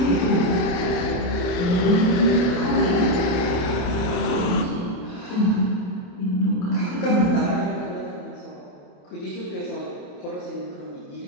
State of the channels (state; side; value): late; right; 28 ms